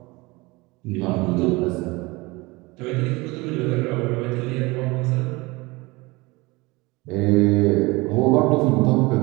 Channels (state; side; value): quieter; left; 23.4 dB